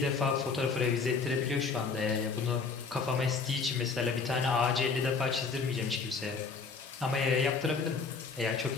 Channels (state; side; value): quieter; right; 4.9 dB